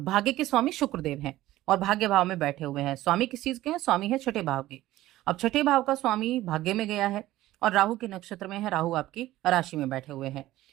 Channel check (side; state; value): left; quieter; 15.7 dB